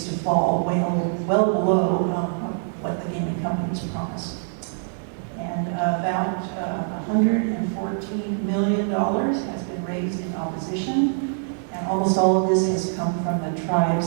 to fall well below what the gaming companies promised. And about $114 million has been raised in opposition, and almost all of this has come from the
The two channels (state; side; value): silent; left; digital silence